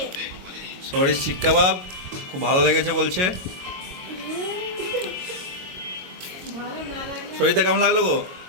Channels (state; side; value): late; left; 22 ms